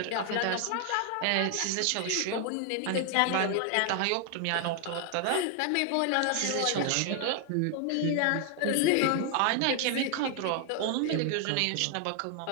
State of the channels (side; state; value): both; different; correlation 0.00